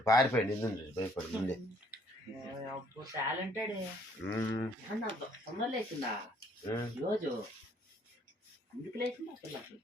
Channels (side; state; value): both; normal; correlation 0.63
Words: పారిపోయాడు. ఇందు భయపడి ముందే. టాలెంటెడ్. తొందర లేచిందా రోజు? ఎందుకు లేచిందా పిల్లకి